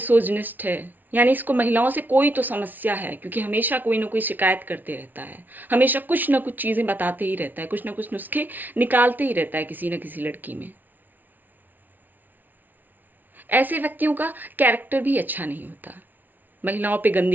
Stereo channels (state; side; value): late; left; 0.084 ms